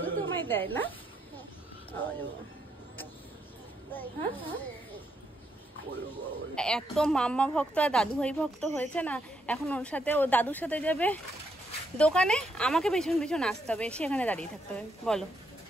তোমায় দেয় না? এত মাম্মা ভক্ত আর দাদু ভাই ভক্ত হয়েছে না, এখন ওর সাথে, ও দাদুর সাথে যাবে দোকানে, আমাকে পেছন পেছন আসতে হবে, সেখানে দাঁড়িয়ে থাকতে হবে। বলো,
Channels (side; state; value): both; normal; correlation 0.77